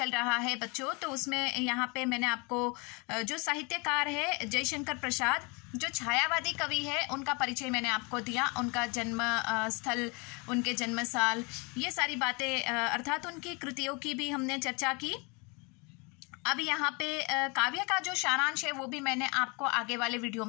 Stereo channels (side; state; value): right; quieter; 29.9 dB